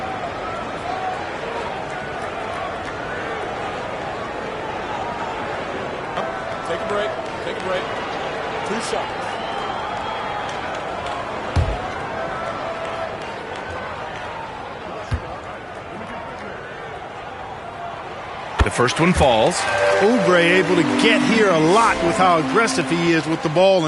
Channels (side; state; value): both; identical; correlation 1.00